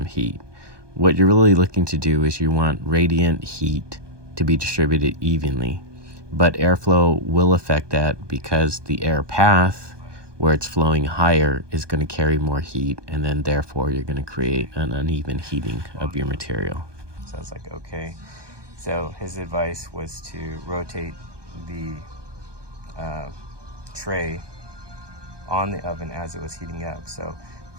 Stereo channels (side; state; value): left; late; 1.2 ms